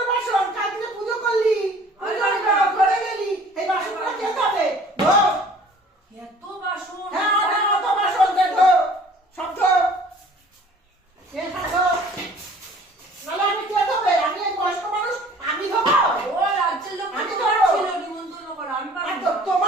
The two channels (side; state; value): both; normal; correlation 0.51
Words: বাসন, কালকে পুজো করলি, ঘরে গেলি, এই বাসনগুলো দিয়ে হবে ধো। এত বাসন? হ্যাঁ অত বাসন দে ধো, সব ধো। নাহলে আমি কে ধোবে? আমি এই বয়স্ক মানুষ, আমি ধোবো? ও রাজ্যের লোক আমি তোমার ধোবো। ছিল নিমন্ত্রণ করা, আমি পারবো না।